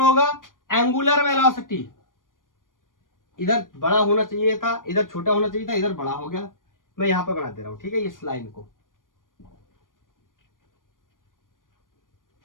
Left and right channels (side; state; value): right; late; 0.90 ms